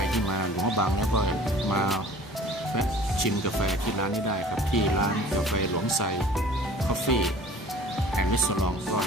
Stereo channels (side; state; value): both; normal; correlation 0.47